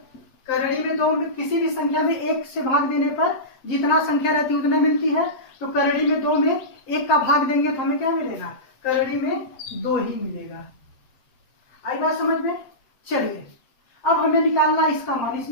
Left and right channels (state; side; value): late; right; 7.8 ms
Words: करड़ी में 2 में किसी भी संख्या में 1 से भाग देने पर जितना संख्या रहती है उतने मिलती है। तो करड़ी में 2 में 1 का भाग देंगे तो हमें क्या मिलेगा करड़ी में 2 ही मिलेगा। आई बात समझ में। चलिए अब हमें निकालना है इसका मान,